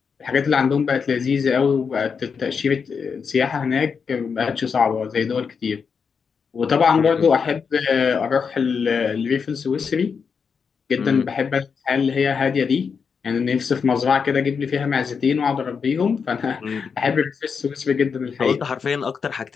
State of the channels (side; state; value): right; quieter; 6.0 dB